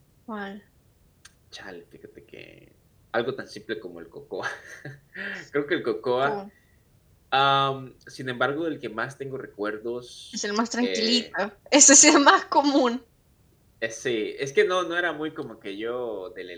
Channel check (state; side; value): identical; both; correlation 1.00